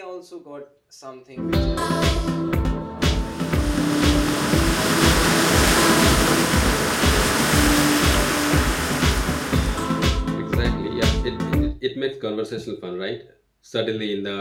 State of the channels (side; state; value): both; identical; correlation 1.00